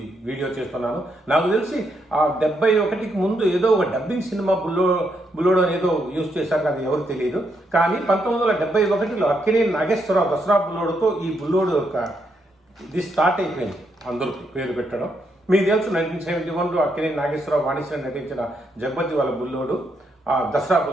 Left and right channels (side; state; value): both; normal; correlation 0.78